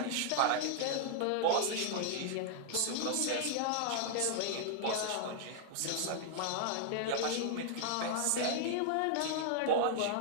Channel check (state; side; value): different; both; correlation -0.01